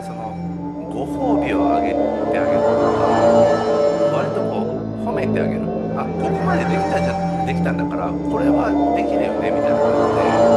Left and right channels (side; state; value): both; identical; correlation 1.00